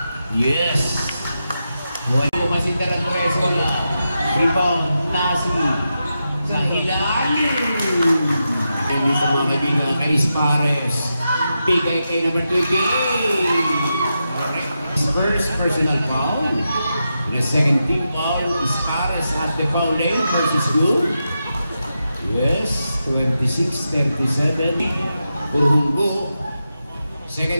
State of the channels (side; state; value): both; inverted; correlation -0.88